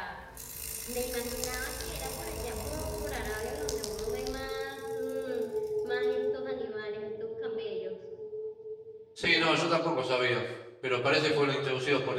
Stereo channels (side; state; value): both; identical; correlation 1.00